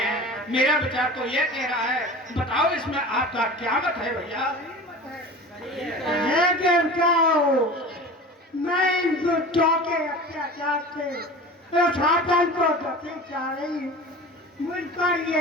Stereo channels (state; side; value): normal; both; correlation 0.36